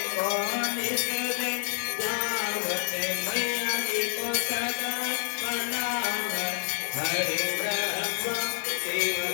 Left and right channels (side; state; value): right; silent; 59 dB below the other